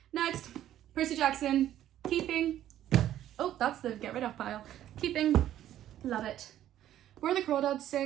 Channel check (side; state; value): left; quieter; 12.1 dB